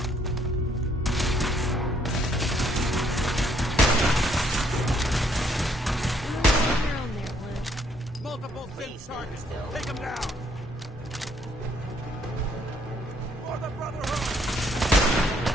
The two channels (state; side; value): normal; both; correlation 0.67